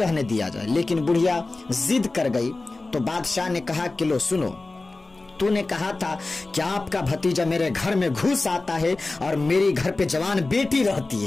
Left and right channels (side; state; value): right; quieter; 3.3 dB